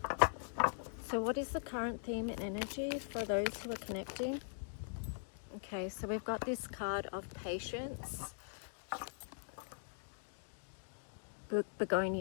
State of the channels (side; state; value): right; silent; digital silence